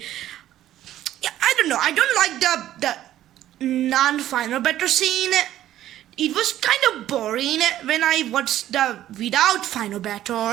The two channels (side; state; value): left; quieter; 12.9 dB